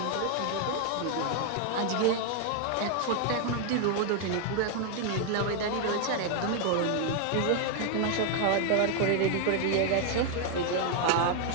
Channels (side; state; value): both; different; correlation 0.00